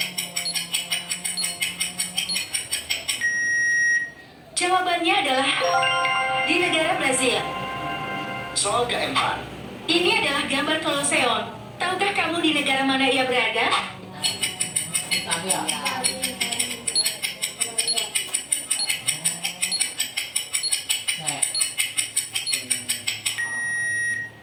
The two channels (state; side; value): identical; both; correlation 1.00